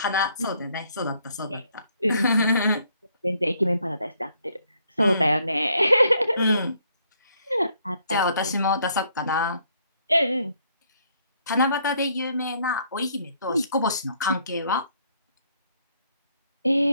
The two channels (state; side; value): inverted; both; correlation -0.69